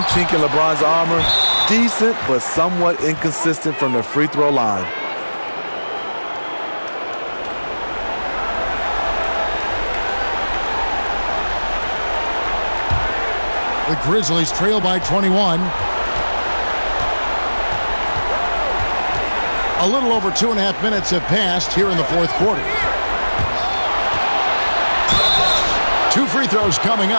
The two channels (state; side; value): inverted; both; correlation -1.00